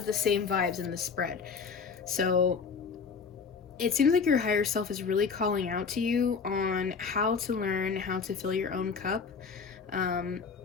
the same vibes in the spread. So it seems like your higher self is really calling out to you on how to learn how to fill your own cup.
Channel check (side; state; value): right; quieter; 5.6 dB